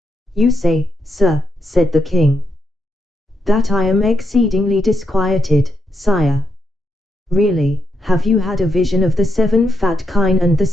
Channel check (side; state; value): both; normal; correlation 0.82